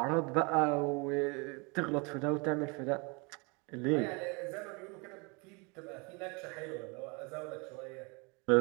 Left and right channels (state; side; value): quieter; left; 30.0 dB